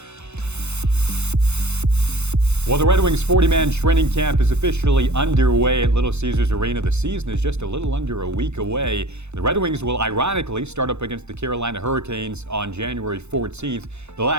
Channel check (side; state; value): left; late; 0.81 ms